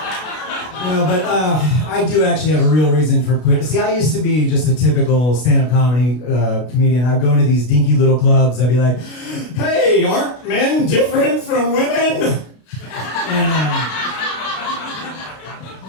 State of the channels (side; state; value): right; late; 32 ms